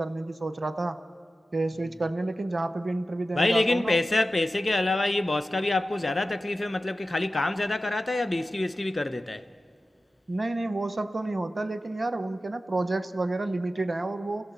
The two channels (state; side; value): normal; both; correlation 0.94